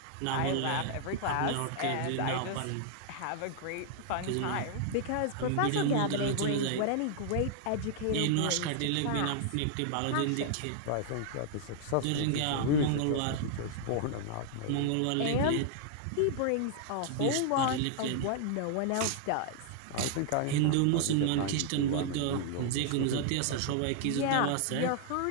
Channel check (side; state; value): both; different; correlation 0.00